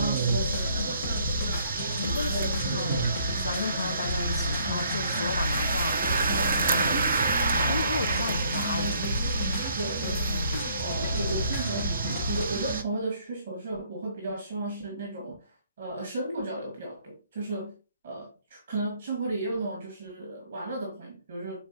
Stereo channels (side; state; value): both; inverted; correlation -0.65